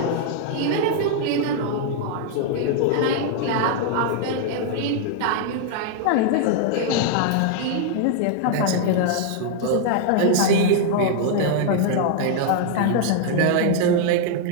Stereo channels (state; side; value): different; both; correlation 0.00